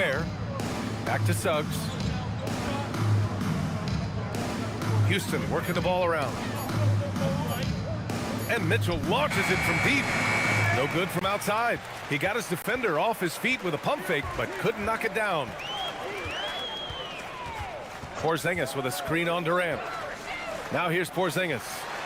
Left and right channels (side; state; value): both; identical; correlation 1.00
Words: Back to Suggs. Houston working the ball around. And Mitchell launches it from deep. No good from outside. He got his defender off his feet with a pump fake, but couldn't knock it down. Porzingis with a screen on Durant. Now here's Porzingis,